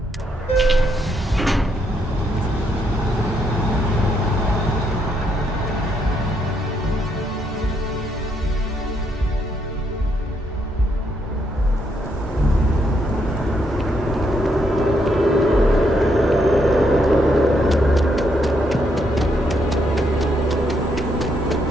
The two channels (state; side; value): normal; both; correlation 0.76